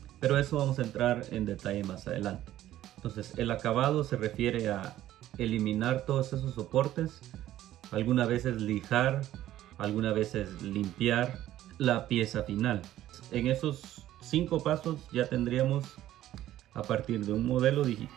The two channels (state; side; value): quieter; left; 13.4 dB